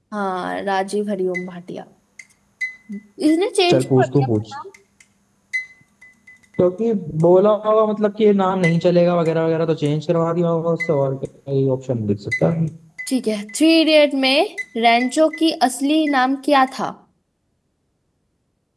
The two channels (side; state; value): both; identical; correlation 1.00